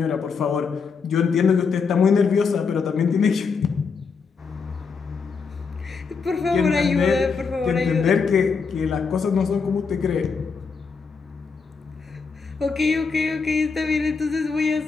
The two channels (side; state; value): right; quieter; 5.3 dB